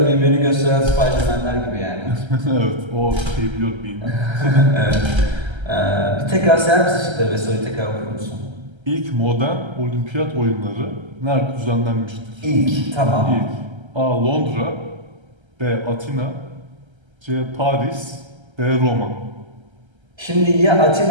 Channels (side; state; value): left; late; 1.3 ms